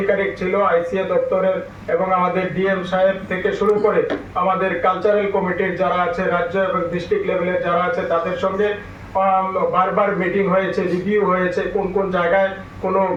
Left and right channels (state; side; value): identical; both; correlation 1.00